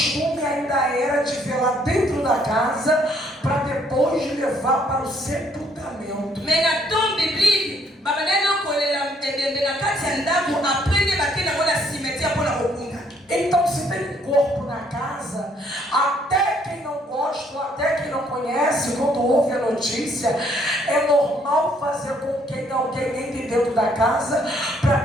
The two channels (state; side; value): normal; both; correlation 0.67